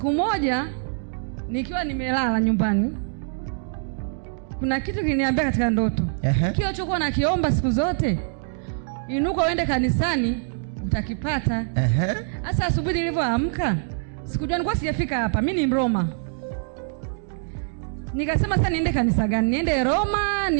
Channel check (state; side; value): silent; left; digital silence